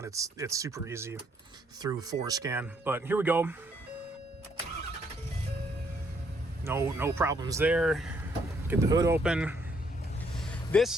It's super easy through ForeScan. But here we go. No problems there. Get the hood open.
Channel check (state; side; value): normal; both; correlation 0.69